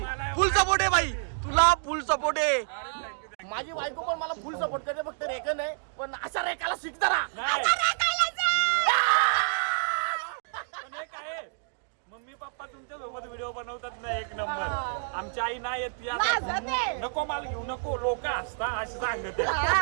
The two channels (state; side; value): silent; left; digital silence